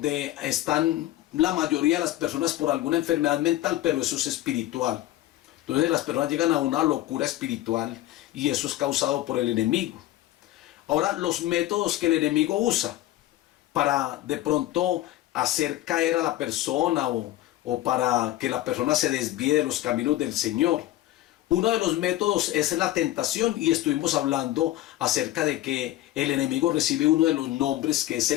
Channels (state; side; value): quieter; right; 15.0 dB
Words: están la mayoría de las personas por alguna enfermedad mental, pero eso es espiritual. Entonces las personas llegan a una locura espiritual, y eso es causado por el enemigo. Ahora, los métodos que el enemigo usa para de pronto hacer caer a la persona o para que la persona se desvíe de los caminos del Señor. Uno de los métodos es la tentación, y estuvimos hablando acerca de que el enemigo recibe uno de los nombres, que es